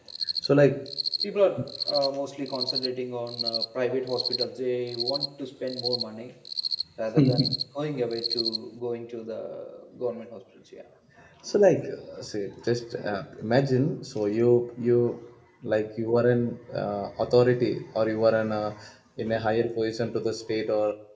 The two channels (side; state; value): both; identical; correlation 1.00